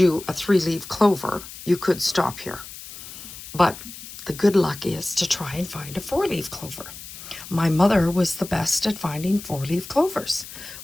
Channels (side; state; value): left; noise; hiss, 14 dB below the sound